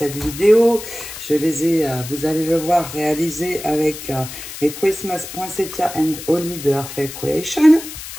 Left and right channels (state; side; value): noise; left; hiss, 11 dB below the sound